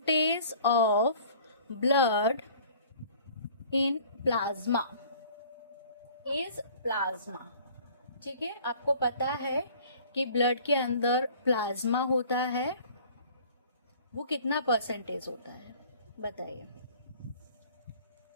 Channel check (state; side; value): inverted; both; correlation -0.50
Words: of blood in plasma is plasma. ठीक है, आपको पता है कि ब्लड के अंदर प्लाज्मा होता है, वो कितना परसेंटेज होता है बताइए?